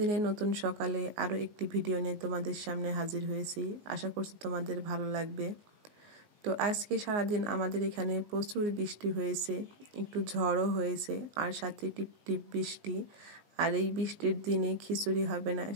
নতুন সকালে আরও একটি ভিডিও নিয়ে তোমাদের সামনে হাজির হয়েছি। আশা করছি তোমাদের ভালো লাগবে। তো আজকে সারাদিন আমাদের এখানে প্রচুর বৃষ্টি হয়েছে, একটু ঝড়ও হয়েছে, আর সাথে টিপ টিপ বৃষ্টি। আর এই বৃষ্টির দিনে খিচুড়ি হবে না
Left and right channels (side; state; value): left; late; 19 ms